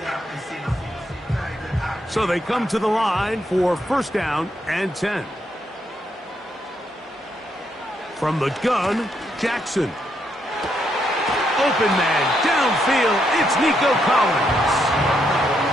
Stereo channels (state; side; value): normal; both; correlation 0.77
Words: So they come to the line for first down and 10. From the gun, Jackson. Open man, downfield, it's Nico Collins.